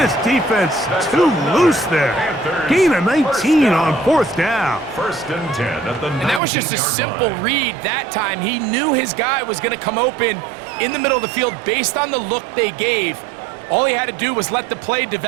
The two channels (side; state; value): left; drops out; at 6.4 s